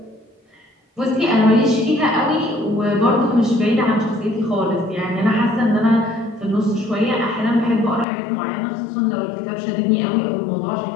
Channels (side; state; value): right; drops out; at 8.1 s